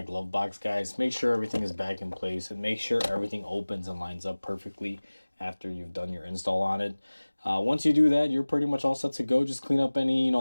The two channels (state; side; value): inverted; both; correlation -1.00